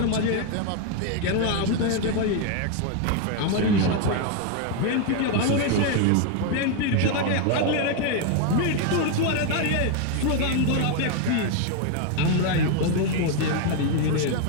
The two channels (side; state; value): both; different; correlation 0.01